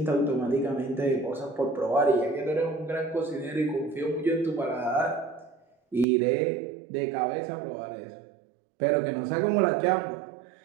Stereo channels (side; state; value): left; drops out; at 6.1 s